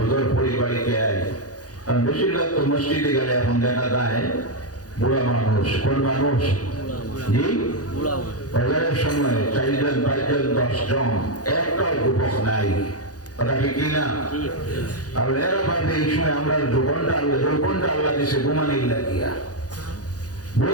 পড়ি, বাড়িতে আই। কারণ বেশিরভাগ তো মসজিদে গেলে এখন দেখা যায় বুড়া মানুষ। কোন মানুষ? জি, ফজরের সময় 4 জন 5 জন 10 জন, একটাও যুবক নাই। কথা কি না? আর এরা ভাবে এই সময় আমরা যৌবনটা আল্লাহ দিছে ঘুমানির লাগিয়া।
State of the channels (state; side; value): late; right; 0.68 ms